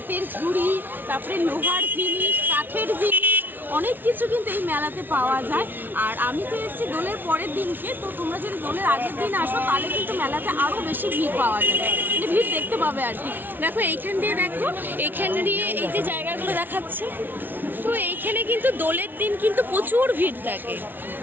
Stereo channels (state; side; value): late; left; 0.091 ms